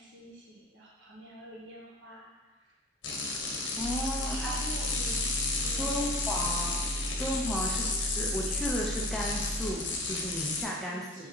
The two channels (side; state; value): both; normal; correlation 0.41